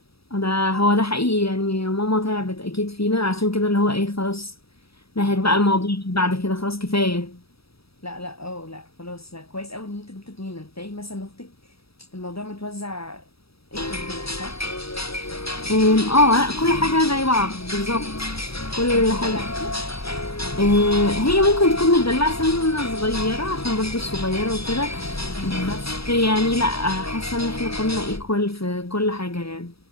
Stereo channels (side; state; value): right; late; 0.77 ms